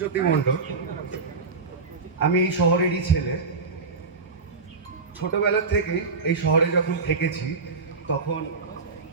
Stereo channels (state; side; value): quieter; left; 4.3 dB